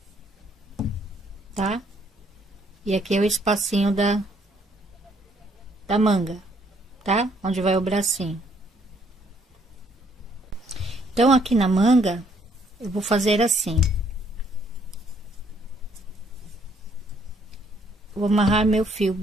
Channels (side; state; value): both; normal; correlation 0.66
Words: Tá? E aqui é o espacinho da manga, tá? Onde vai o bracinho. Então, aqui na manga, eu vou fazer assim. Vou amarrar meu fio